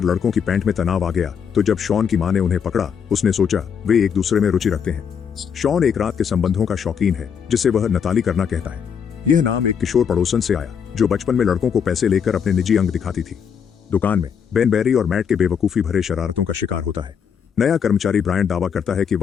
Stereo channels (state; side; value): quieter; right; 7.3 dB